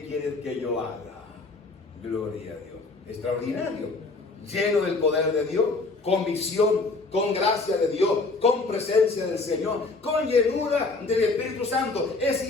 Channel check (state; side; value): quieter; right; 3.6 dB